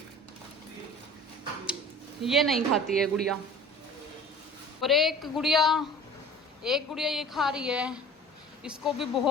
ये नहीं खाती है गुड़िया, और एक गुड़िया ये खा रही है, इसको भी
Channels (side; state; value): both; normal; correlation 0.43